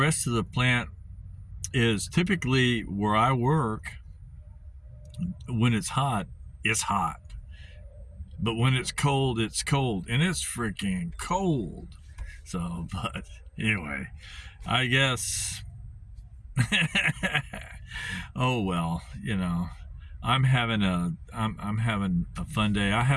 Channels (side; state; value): both; identical; correlation 1.00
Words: of the plant is typically where I work. When it's hot, it's hot. But when it's cold, it's cold. And it's freaking cold. So, but anyway, I guess, oh well, I'm having a fun day.